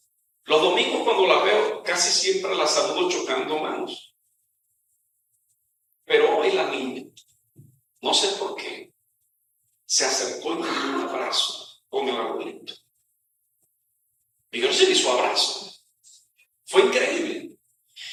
los domingos cuando la veo casi siempre la saludo chocando manos. Pero hoy la niña, no sé por qué, se acercó y me dio un abrazo con el abuelito. Y yo recibí su abrazo. Fue increíble.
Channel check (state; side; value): identical; both; correlation 1.00